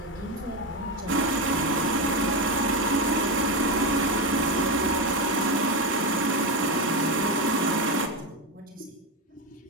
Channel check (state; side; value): normal; both; correlation 0.13